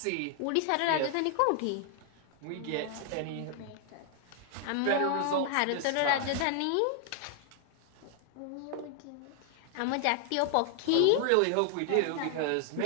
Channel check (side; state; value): both; different; correlation 0.00